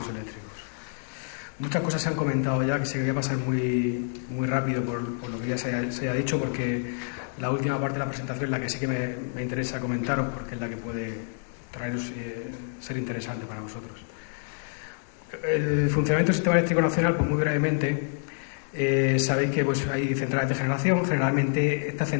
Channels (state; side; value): silent; right; 60 dB below the other